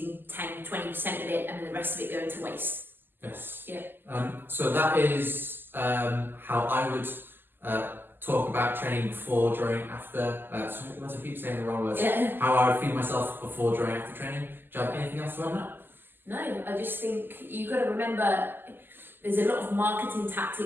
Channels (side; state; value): left; late; 0.095 ms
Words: 10-20% of it and then the rest of it going to waste. Yes. Yeah. So that is how I would talk about training before, during, after. Once I keep saying the wrong words. Yeah. How I would feed myself before, during, after training. Do you have anything else to add on that? No, I just think you've got to remember there's a lot of marketing